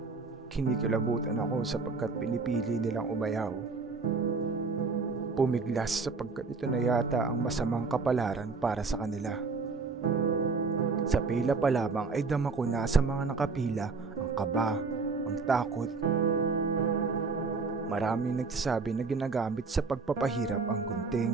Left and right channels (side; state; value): left; quieter; 4.3 dB